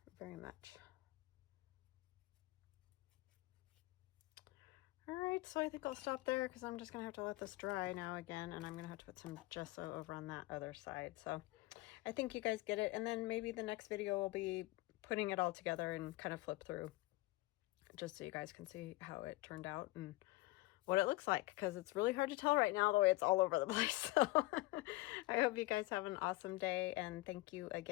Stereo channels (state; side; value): quieter; right; 20.3 dB